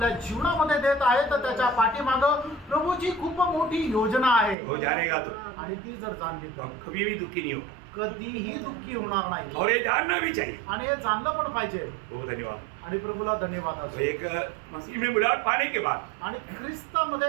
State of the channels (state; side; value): drops out; left; at 4.5 s